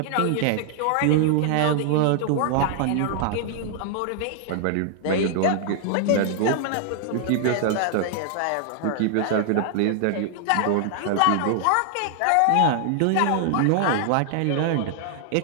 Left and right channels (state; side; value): different; both; correlation 0.00